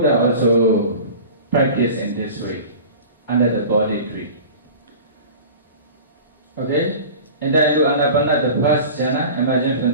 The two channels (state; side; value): inverted; both; correlation -0.38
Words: also practiced in this way, under the body tree. And then to Ānāpāna, the first jhana, imagine from